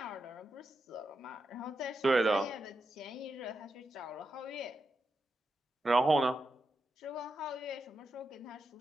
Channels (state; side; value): normal; both; correlation 0.87